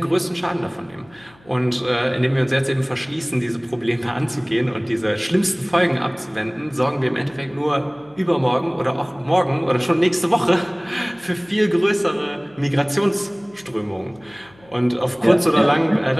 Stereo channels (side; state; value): left; noise; hum, 28 dB below the sound